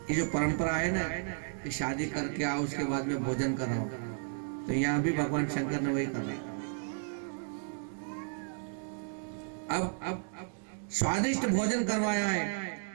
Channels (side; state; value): left; silent; digital silence